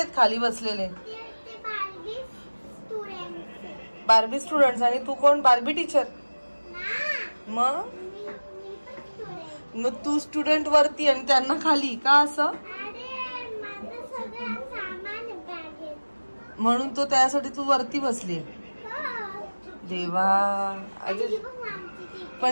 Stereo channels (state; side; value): inverted; both; correlation -1.00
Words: खाली बसलेले? Barbie students. आणि तू कोण? Barbie teacher. मग तू स्टुडंट वरती आणि त्यांना खाली का? असं म्हणून तो त्यासाठी तू वरती बसली. देवा,